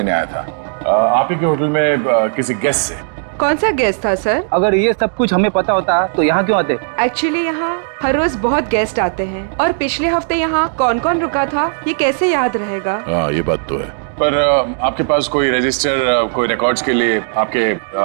आया था आप ही के होटल में किसी गेस्ट से। कौन सा गेस्ट था सर? अगर ये सब कुछ हमें पता होता तो यहाँ क्यों आते? एक्चुअली यहाँ हर रोज बहुत गेस्ट आते हैं और पिछले हफ्ते यहाँ कौन कौन रुका था ये कैसे याद रहेगा? हाँ, ये बात तो है। पर आपके पास कोई रजिस्टर, कोई रिकॉर्ड्स के लिए आपके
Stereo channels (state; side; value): silent; left; digital silence